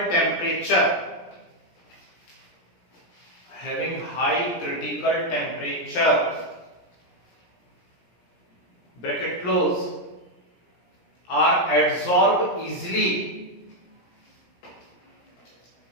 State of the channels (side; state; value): right; late; 17 ms